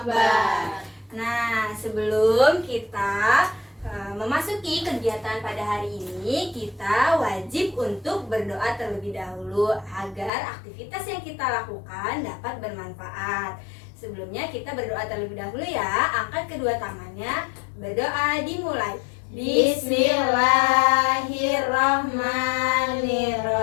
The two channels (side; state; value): right; drops out; at 10.3 s